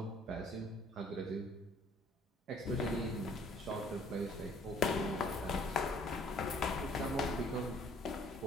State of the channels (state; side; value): normal; both; correlation 0.59